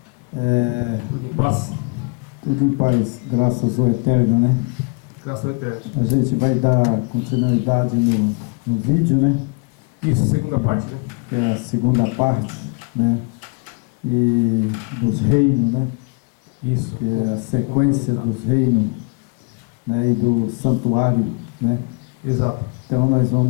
Tudo em paz. Tudo em paz, graças ao Eterno, né? Graças ao Eterno. A gente vai dar continuidade no vídeo, né? Isso, segunda parte, né? Que é a segunda parte, né? E dos reinos, né? Isso. Que é a sequência dos reinos, né? E do santuário, né? Exato. Então nós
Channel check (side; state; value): right; quieter; 31.7 dB